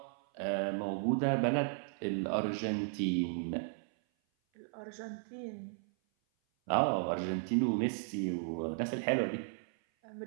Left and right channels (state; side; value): silent; left; 54 dB below the other